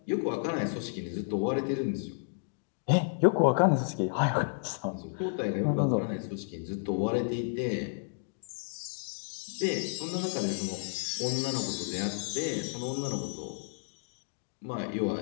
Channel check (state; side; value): silent; right; digital silence